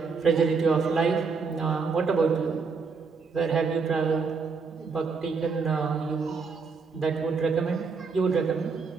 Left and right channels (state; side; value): quieter; left; 5.0 dB